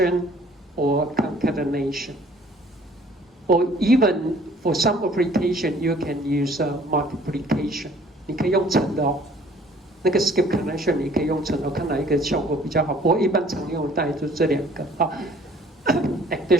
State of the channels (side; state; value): both; normal; correlation 0.55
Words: or concatenation. Or even for some application, you can use multiplication. 你可以用乘的哦。那个 skip connection 你可以用乘的，看哪一个效果比较好。不过一般常用的大概就这两个啊